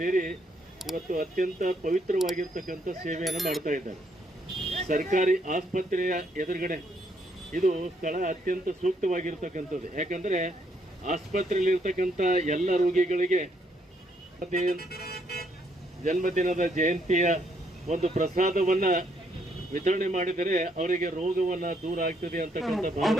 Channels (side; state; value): both; normal; correlation 0.72